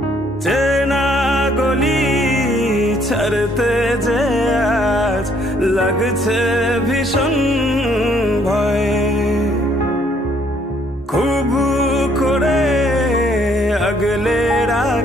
চেনা গলি ছাড়তে যে আজ লাগছে ভীষণ ভয়। খুব করে আগলে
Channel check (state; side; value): normal; both; correlation 0.65